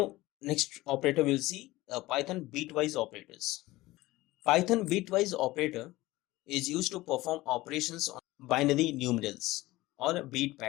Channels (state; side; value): quieter; right; 18.6 dB